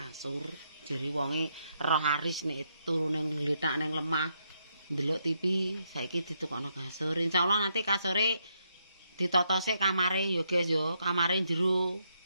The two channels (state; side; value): inverted; both; correlation -0.78